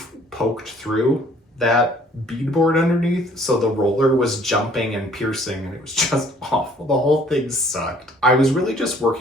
poked through that beadboard underneath, so the roller was jumping and piercing, and it was just awful. The whole thing sucked. I was really just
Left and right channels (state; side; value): normal; both; correlation 0.58